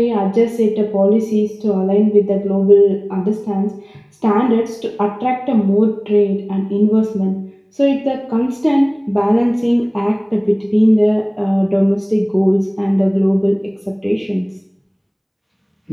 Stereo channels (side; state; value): both; identical; correlation 1.00